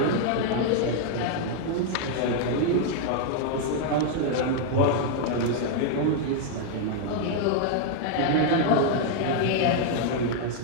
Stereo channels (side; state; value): both; different; correlation 0.00